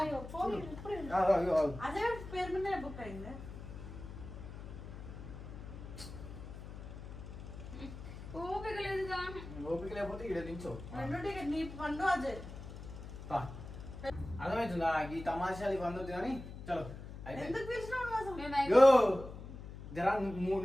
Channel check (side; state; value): left; noise; hum, 11 dB below the sound